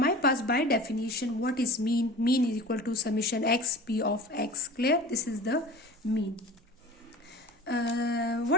पास by definition what is mean? Mean is equal to summation x p of x. Clear? This is the mean.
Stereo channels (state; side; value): normal; both; correlation 0.39